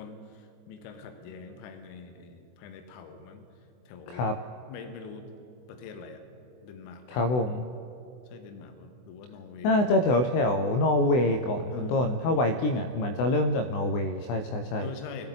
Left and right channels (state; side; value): late; right; 24 ms